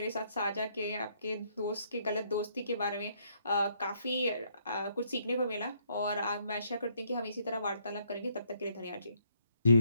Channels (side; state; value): both; inverted; correlation -0.70